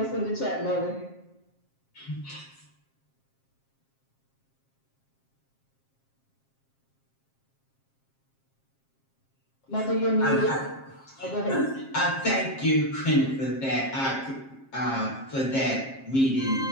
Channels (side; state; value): right; late; 7.5 ms